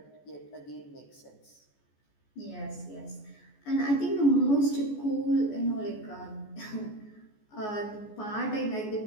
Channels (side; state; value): right; late; 14 ms